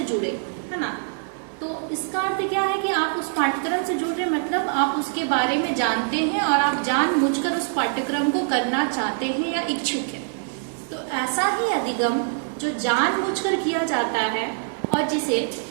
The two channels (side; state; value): left; silent; digital silence